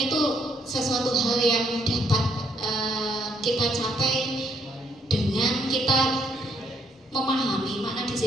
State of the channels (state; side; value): normal; both; correlation 0.71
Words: sesuatu hal yang dapat kita capai dengan kita memahami makna